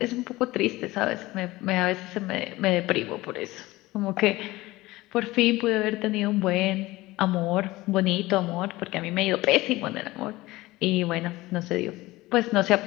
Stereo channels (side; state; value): right; quieter; 19.2 dB